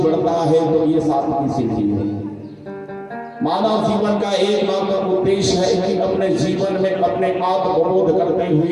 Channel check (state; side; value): identical; both; correlation 1.00